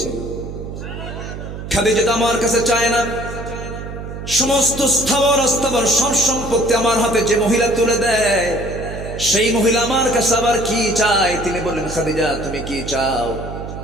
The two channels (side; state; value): right; noise; hum, 9 dB below the sound